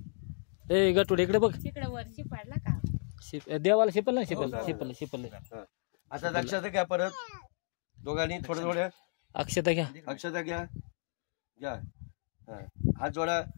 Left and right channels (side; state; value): right; silent; 56 dB below the other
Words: ए गटुड इकडे बघ. इकडे वर शिपाडला का देवाला शिपल ना, शिपल. हा. आता लक्षात घ्या परत दोघांनी थोड्या अक्षता घ्या. अक्षता घ्या. हात जोडा.